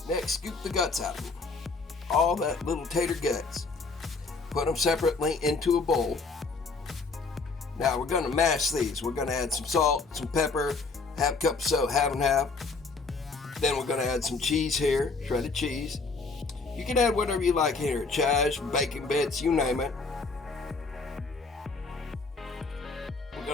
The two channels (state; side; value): quieter; right; 4.1 dB